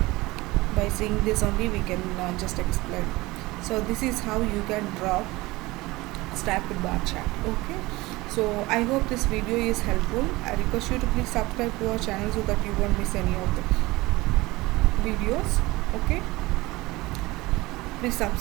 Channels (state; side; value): quieter; left; 20.7 dB